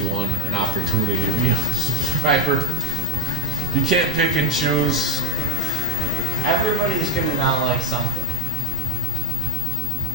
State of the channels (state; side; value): normal; both; correlation 0.04